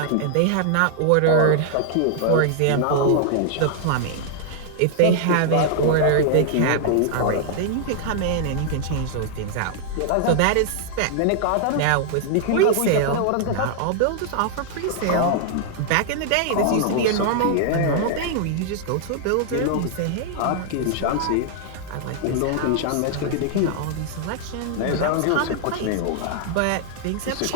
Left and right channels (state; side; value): different; both; correlation 0.00